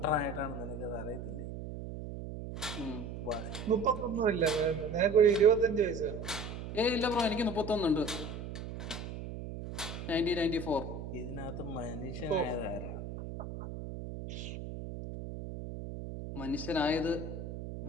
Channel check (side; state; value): right; noise; hum, 8 dB below the sound